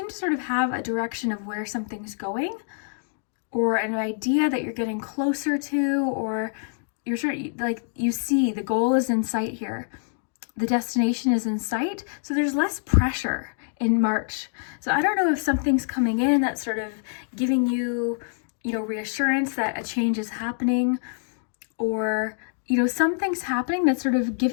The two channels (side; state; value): right; silent; 61 dB below the other